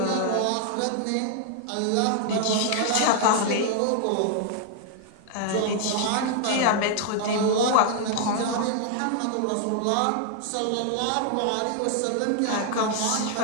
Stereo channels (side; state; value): both; different; correlation 0.00